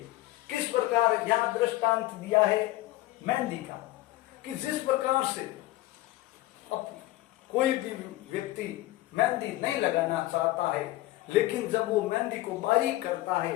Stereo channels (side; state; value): right; quieter; 17.5 dB